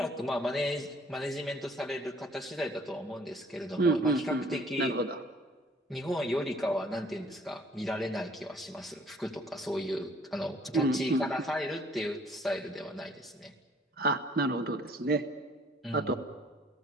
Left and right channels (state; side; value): normal; both; correlation 0.58